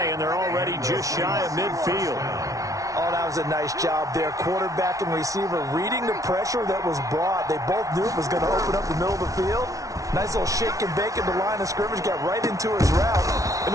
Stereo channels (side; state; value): left; late; 0.17 ms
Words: and they're already just shy of midfield. Oh, that was a nice job there. Quarterback and receiver reading the pressure that was brought. They both knew it was going to open up the middle of the field. Nice little shake and bake at the line of scrimmage, got right into his route. And